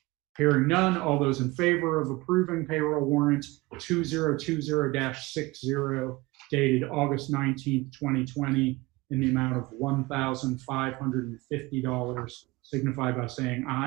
Hearing none, all those in favor of approving payroll warrant 2020-60 dated August 19th, 2020 in the amount of $1,550 signify by saying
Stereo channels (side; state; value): left; quieter; 22.1 dB